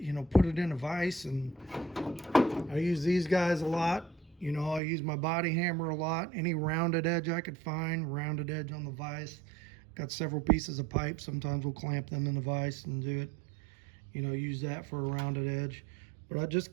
know, put it in a vise, and I use these guys a lot. You know, I use my body hammer a lot. Any rounded edge I could find, rounded edge on the vise. Got several pieces of pipe. Sometimes we'll clamp them in the vise and do it, you know, use that for a rounded edge. But I just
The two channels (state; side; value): drops out; left; at 4.8 s